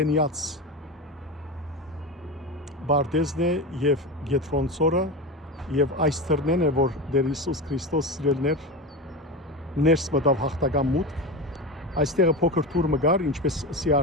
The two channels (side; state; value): both; normal; correlation 0.21